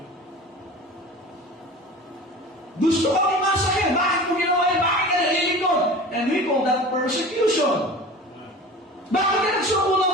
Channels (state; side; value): normal; both; correlation 0.37